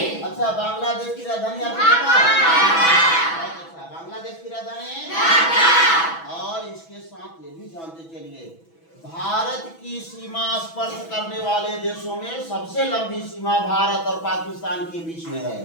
अच्छा, बांग्लादेश की राजधानी आपको पता है? अच्छा, बांग्लादेश की राजधानी, और इसके साथ ये भी जानते चलिए, भारत की सीमा स्पर्श करने वाले देशों में सबसे लंबी सीमा भारत और पाकिस्तान के बीच में है।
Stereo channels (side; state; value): right; late; 6.1 ms